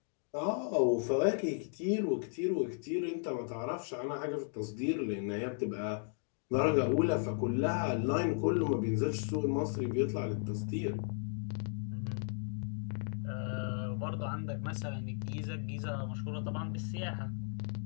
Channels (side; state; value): right; silent; 54 dB below the other